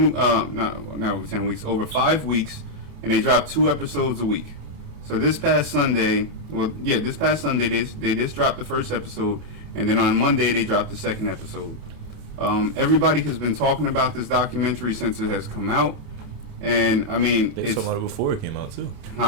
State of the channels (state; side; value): late; left; 28 ms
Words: over 10 weeks, over 5 weeks, and they dropped 2 episodes a week. So this past Sunday, they just dropped the first episode, and then on Monday they dropped the second episode. Everybody has been talking about this documentary since it has come out. And I mean, they were talking about it before it came out too.